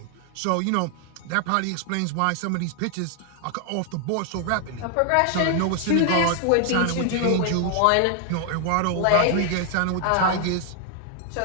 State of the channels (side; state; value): both; different; correlation 0.00